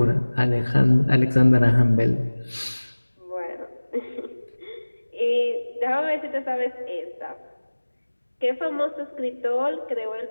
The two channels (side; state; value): both; inverted; correlation -1.00